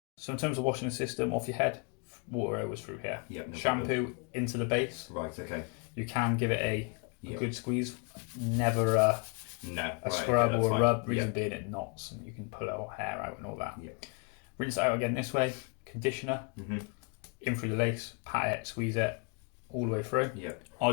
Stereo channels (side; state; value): right; quieter; 35.1 dB